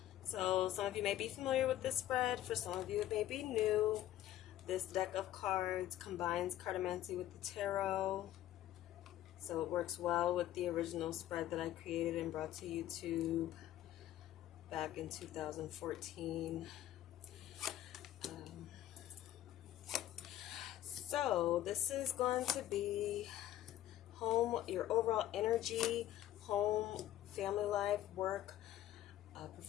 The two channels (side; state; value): right; quieter; 13.2 dB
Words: So some of you may be familiar with this spread. For some of you it may be new. This deck of cards combines cartomancy with the tarot. So it works well with the original spread that I created and brought to YouTube back in 2014. So this is going to be home, your overall energy, home, family life, work,